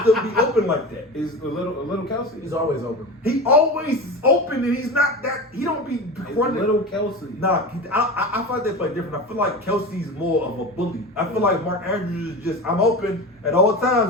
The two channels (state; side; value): normal; both; correlation 0.29